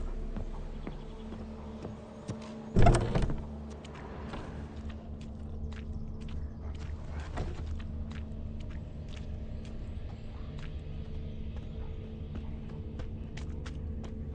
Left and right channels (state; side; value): identical; both; correlation 1.00